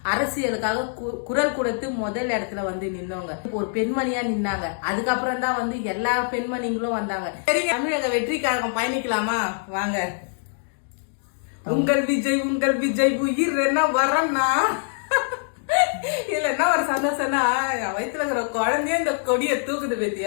அரசியலுக்காக குரல் கொடுத்து முதல் இடத்துல நின்னவங்க. ஒரு பெண்மணியா நின்னாங்க. அதுக்கப்புறம் தான் எல்லா பெண்மணிகளும் வந்தாங்க. சரி, தமிழக வெற்றி கழகம் பயணிக்கலாமா வாங்க. உங்கள் விஜய் உயிர் என்ன வரன்னா இல்ல என்ன ஒரு சந்தோஷம்னா வயிற்றுல இருக்கிற குழந்தைய இந்த கொடியை தூக்குது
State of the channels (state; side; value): silent; right; digital silence